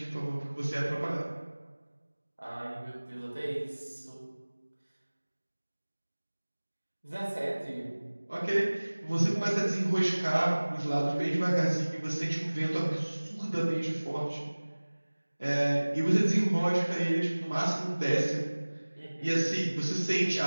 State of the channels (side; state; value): both; inverted; correlation -1.00